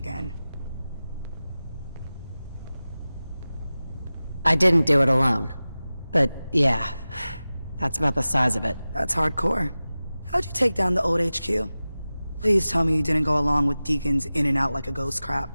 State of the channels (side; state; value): both; inverted; correlation -0.96